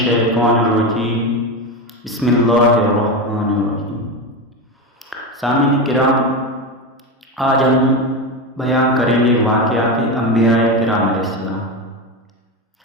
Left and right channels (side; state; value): both; normal; correlation 0.17